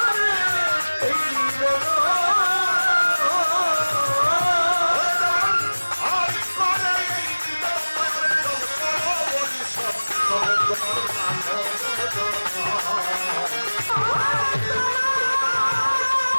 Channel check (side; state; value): both; inverted; correlation -1.00